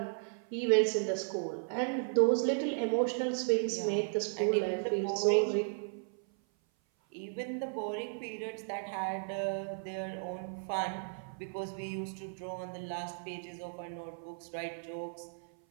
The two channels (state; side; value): silent; left; 54 dB below the other